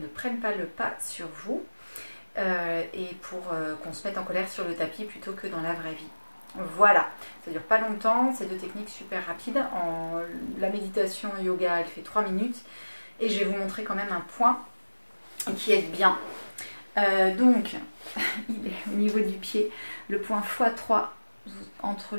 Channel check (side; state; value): both; inverted; correlation -1.00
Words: prenne pas le pas sur vous et pour qu'on se mette en colère sur le tapis plutôt que dans la vraie vie. Voilà, ça dure pas longtemps, c'est deux techniques super rapides. La méditation yoga, elle fait 3 minutes et je vais vous montrer quand même un point qui aide bien. Donc, il est au niveau du pied, le point x3 entre